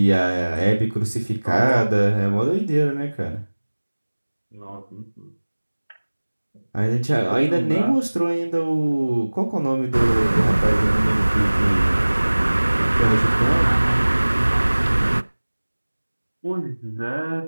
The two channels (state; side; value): inverted; both; correlation -1.00